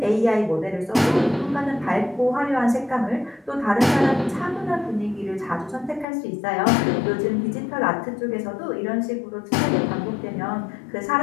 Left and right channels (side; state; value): right; drops out; at 6.1 s